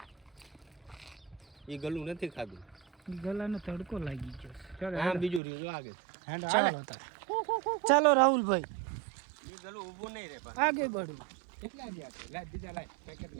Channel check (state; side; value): drops out; left; at 5.4 s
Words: એ ગલું નથી ખાધું. ગલાને તડકો લાગી ગયો. ચાલો આમ બીજું રહ્યું જો આગળ. ચાલો તાર. ચાલો રાહુલભાઈ એ ગલું ઊભું નહીં રે પણ. આગે બઢો. કેટલા ગયા છે? લાઈ બીજા લાઈ પેકેટ